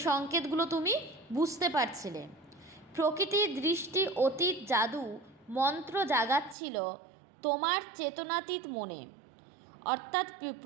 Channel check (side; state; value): left; drops out; at 6.6 s